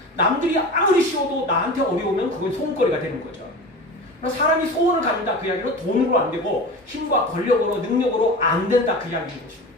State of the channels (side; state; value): both; normal; correlation 0.32